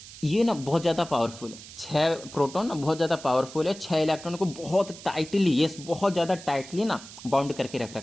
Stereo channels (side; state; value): right; noise; hiss, 16 dB below the sound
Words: ये ना बहुत ज़्यादा पावरफुल है। 6 प्रोटॉन ना बहुत ज़्यादा पावरफुल है, 6 इलेक्ट्रॉन को बहुत टाइटली, यस बहुत ज़्यादा टाइटली ना बाउंड करके रख